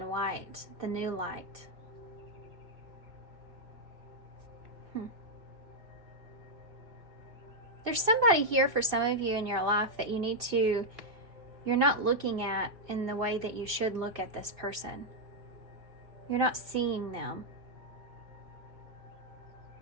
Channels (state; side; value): late; left; 2.5 ms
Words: white, the new light. There's somebody here for some of you in your life that you need to, you're not looking at in the way that you should look at this person. You're not seeing them.